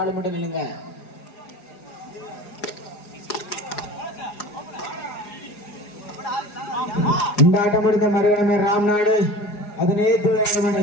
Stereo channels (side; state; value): right; late; 4.8 ms